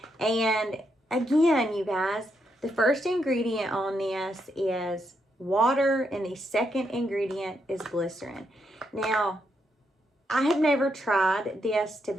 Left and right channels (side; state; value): both; normal; correlation 0.80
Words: And again, you guys, the first ingredient on this is water and the second ingredient is glycerin. Now, I have never tried this, to